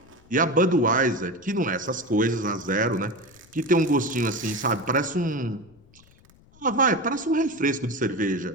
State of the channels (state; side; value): noise; left; rumble, 28 dB below the sound